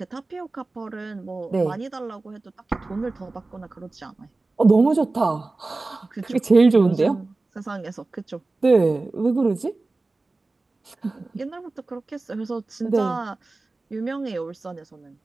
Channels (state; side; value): quieter; left; 3.3 dB